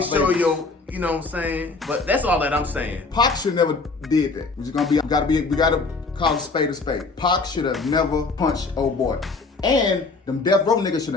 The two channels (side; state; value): right; quieter; 3.9 dB